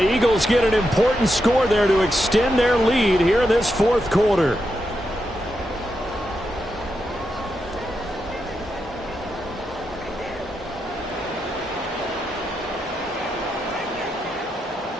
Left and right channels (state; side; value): normal; both; correlation 0.85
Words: Eagles get an important score there to extend their lead here in this 4th quarter.